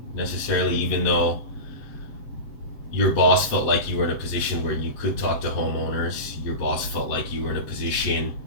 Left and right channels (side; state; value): right; late; 8.0 ms